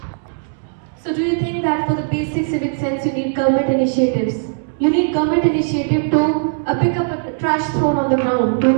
So do you think that for the basic civic sense you need government initiatives? You need government initiative to pick up a trash thrown on the ground. Do you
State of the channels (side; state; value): left; silent; digital silence